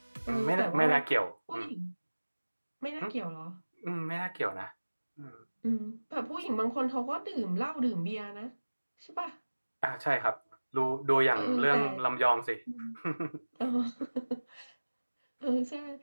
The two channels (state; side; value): inverted; both; correlation -1.00